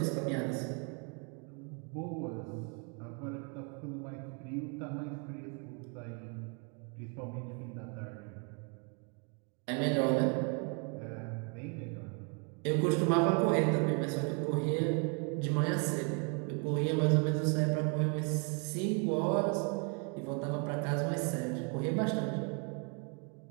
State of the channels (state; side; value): quieter; left; 36.6 dB